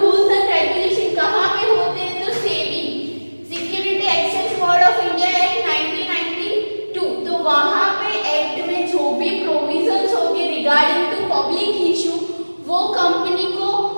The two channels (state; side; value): inverted; both; correlation -1.00